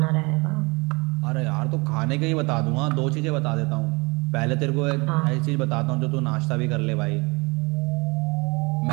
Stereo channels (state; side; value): quieter; left; 27.0 dB